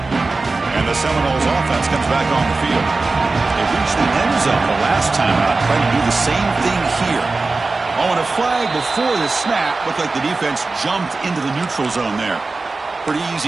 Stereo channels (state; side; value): quieter; left; 3.7 dB